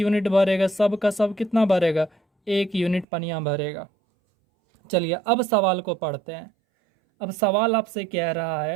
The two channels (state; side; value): drops out; left; at 3.1 s